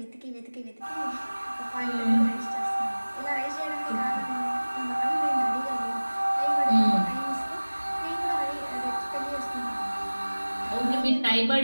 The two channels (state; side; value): inverted; both; correlation -1.00